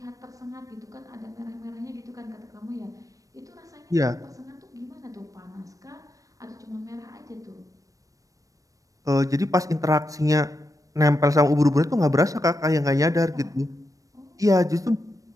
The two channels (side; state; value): left; late; 0.16 ms